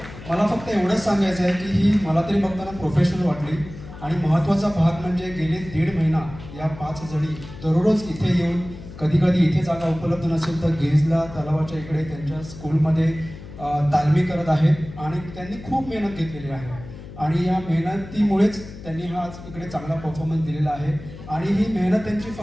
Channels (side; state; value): left; noise; hum, 14 dB below the sound